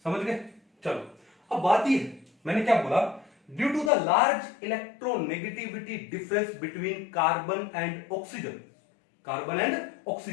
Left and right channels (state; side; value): drops out; right; at 3.9 s